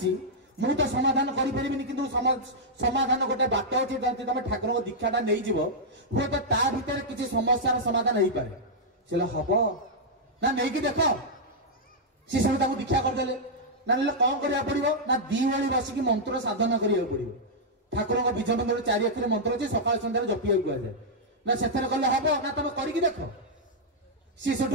ମୁଁ ତ ସମାଧାନ କରିପାରିବିନି କିନ୍ତୁ ସମାଧାନ ଗୋଟେ ବାଟ ଅଛି ଯଦି ତମେ ଠାକୁରଙ୍କ ଦୀକ୍ଷାଟା ନେଇଯିବ ହୁଏତ ତା ଭିତରେ କିଛି ସମସ୍ୟାର ସମାଧାନ ହେଇପାରେ ସେ ହବ ନା ନେଇକି ଦେଖ ସେ ସବୁ ତାଙ୍କୁ ଦୀକ୍ଷା କରିଦେଲେ ନା ନେଲେ କଣ କରିବାକୁ ପଡିବ ନା 2 ଓଳି ବସିକି ମନ୍ତ୍ର ସାଧନା କରିବାକୁ ପଡିବ ଠାକୁରଙ୍କ ବୀଜ ମନ୍ତ୍ର 4 ଅକ୍ଷର ମନ୍ତ୍ର ଅଛି ସକାଳ ସନ୍ଧ୍ୟାରେ ଜପିବାକୁ କୁହାଯାଏ ନା ସେଥିରେ କଲେ ହବ ନା ତମେ କରିକି ଦେଖ ସିଏ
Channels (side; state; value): both; normal; correlation -0.07